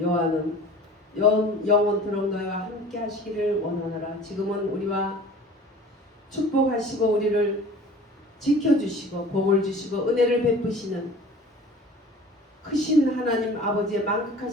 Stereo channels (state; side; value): normal; both; correlation 0.43